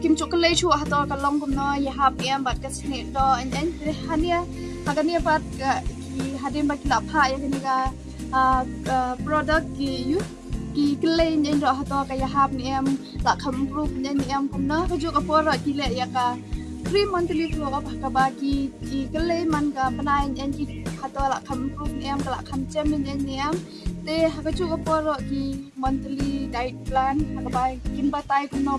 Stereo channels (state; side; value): identical; both; correlation 1.00